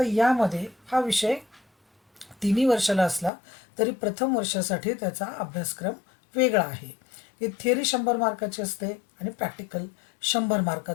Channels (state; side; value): drops out; right; at 3.3 s